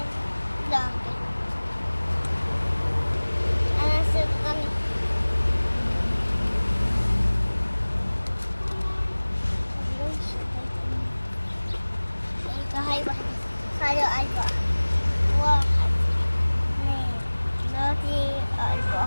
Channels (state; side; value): inverted; both; correlation -1.00